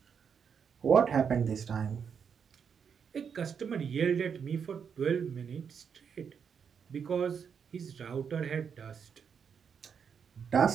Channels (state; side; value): quieter; left; 6.9 dB